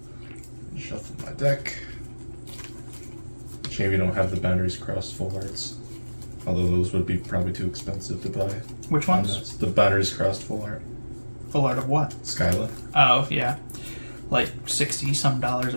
Shuffle my deck. Shame you don't have the Boundaries Crossed full arts. Although those would be probably too expensive to buy. Which ones? The Boundaries Crossed full art. Full art of what? Skyla. Oh, yeah. Like $60-some a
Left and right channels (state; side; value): inverted; both; correlation -1.00